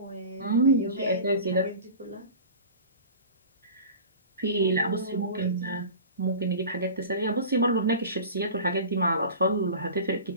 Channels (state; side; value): inverted; both; correlation -0.37